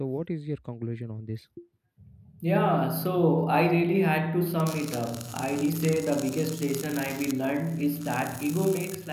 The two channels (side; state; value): both; identical; correlation 1.00